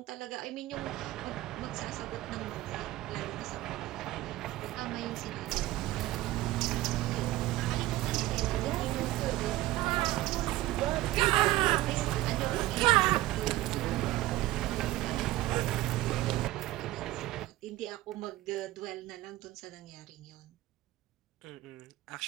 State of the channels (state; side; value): quieter; left; 16.9 dB